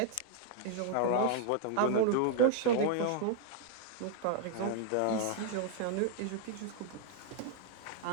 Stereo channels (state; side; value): different; both; correlation -0.01